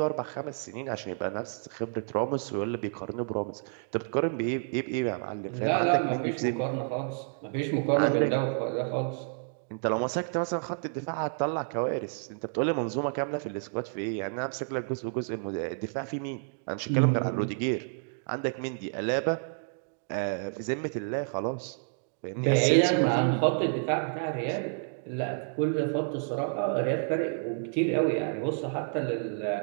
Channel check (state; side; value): silent; left; digital silence